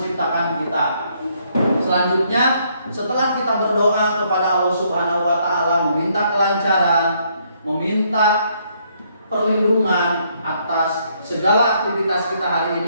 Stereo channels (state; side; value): inverted; both; correlation -0.70